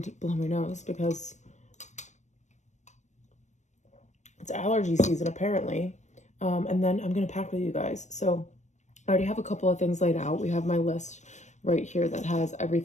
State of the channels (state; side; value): late; right; 0.34 ms